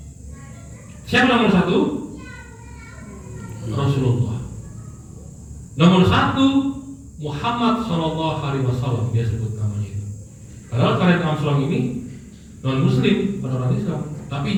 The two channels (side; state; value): both; identical; correlation 1.00